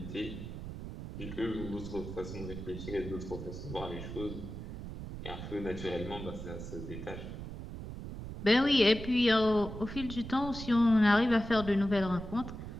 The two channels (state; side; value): noise; right; rumble, 9 dB below the sound